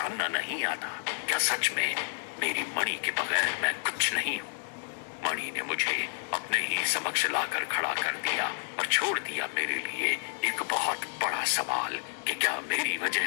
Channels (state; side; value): silent; right; digital silence